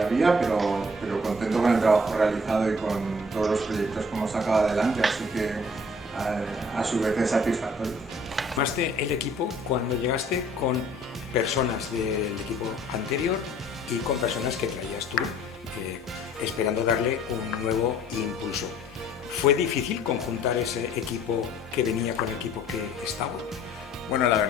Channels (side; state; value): both; normal; correlation 0.55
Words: pero contento con el trabajo realizado y con todos los proyectos que hemos sacado adelante, así que a su vez es satisfactorio. Formaste el equipo cuando llegaste con personas del equipo anterior y con personas que traías tú, esperando darle un nuevo impulso. ¿Fue difícil conjuntar ese equipo que venía con el equipo que estaba? Bueno, la